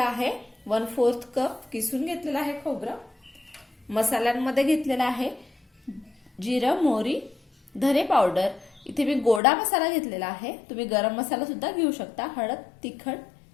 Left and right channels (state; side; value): drops out; right; at 9.4 s